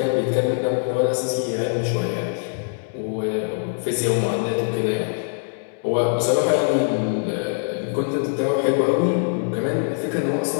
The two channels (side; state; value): right; silent; digital silence